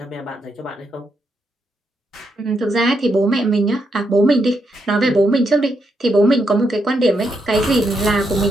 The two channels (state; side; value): normal; both; correlation 0.80